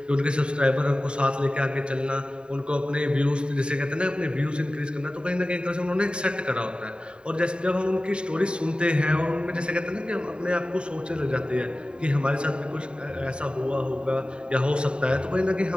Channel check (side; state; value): left; late; 0.051 ms